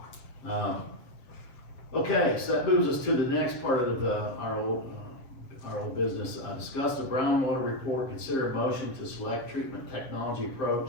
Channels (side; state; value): right; late; 7.5 ms